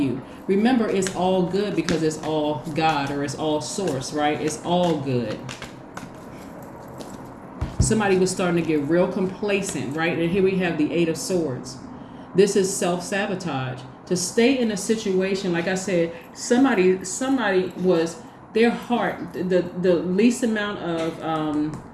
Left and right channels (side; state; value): both; identical; correlation 1.00